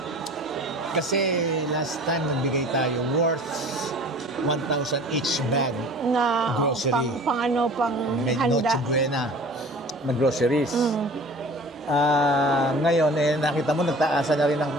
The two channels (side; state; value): both; normal; correlation 0.44